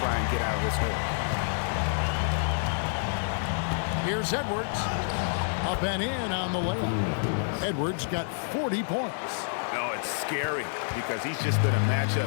try and get out of this hole. Here's Edwards. Up and in on the layup. Edwards got 40 points. No, it's scary because he's just been a matchup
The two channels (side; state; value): right; silent; 59 dB below the other